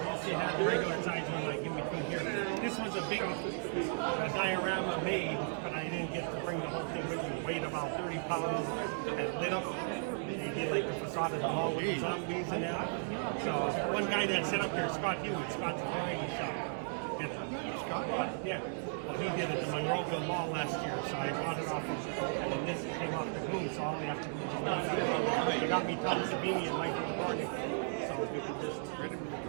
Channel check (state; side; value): silent; left; 54 dB below the other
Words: you had the regular size one like in between here. This was a big diorama made, but I didn't get to bring the whole thing with me. It weighed about 30 pounds and lit up. They did like the facade of the mall with the zombies and that. So one guy that set up here, Scott Hughes, Scott's variety shop. Scott? Yeah. Well, he did it at the Monroeville Mall last year, so I bought it off him. And then this came off the boom, so all we have to do is just that. They got me Tom Savini and Michael Cornick. So we could just